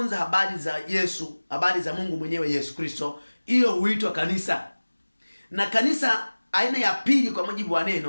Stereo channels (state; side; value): inverted; both; correlation -1.00